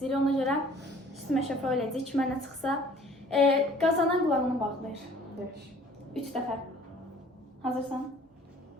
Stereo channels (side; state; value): both; normal; correlation 0.53